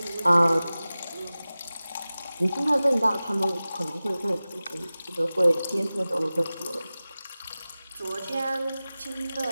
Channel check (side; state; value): both; inverted; correlation -0.97